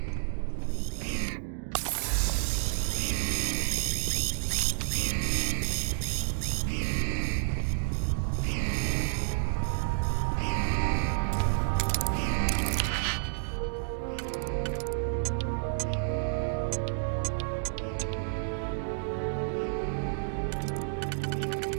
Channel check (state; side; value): silent; left; digital silence